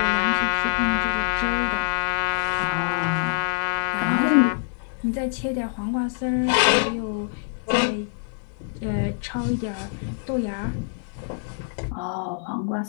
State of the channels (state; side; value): silent; right; digital silence